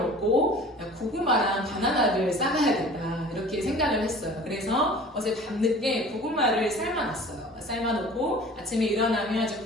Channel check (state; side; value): normal; both; correlation 0.44